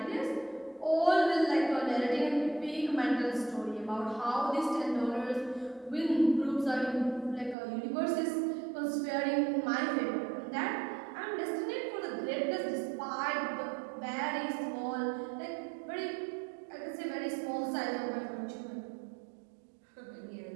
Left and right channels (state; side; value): drops out; left; at 7.6 s